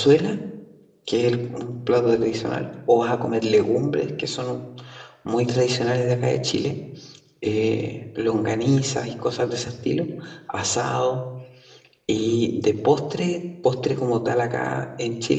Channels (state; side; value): identical; both; correlation 1.00